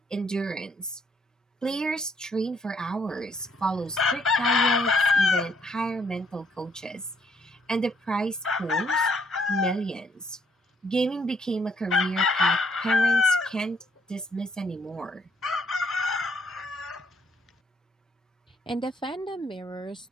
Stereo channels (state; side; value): normal; both; correlation 0.68